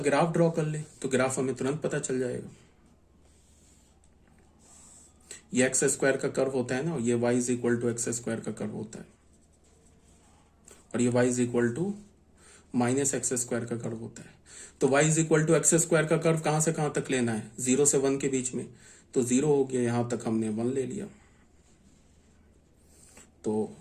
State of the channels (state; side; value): identical; both; correlation 1.00